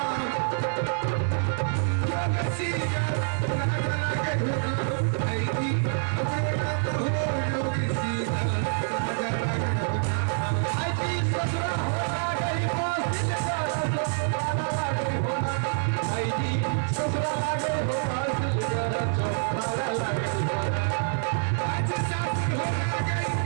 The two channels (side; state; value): left; silent; 58 dB below the other